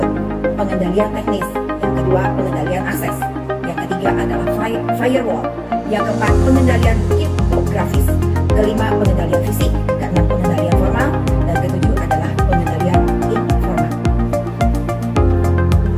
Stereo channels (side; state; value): both; identical; correlation 1.00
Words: Pengendalian teknis. Yang kedua, pengendalian akses. Yang ketiga adalah firewall. Yang keempat, pengendalian kriptografis. Kelima, pengendalian fisik. Keenam, pengendalian formal. Dan ketujuh adalah pengendalian informal.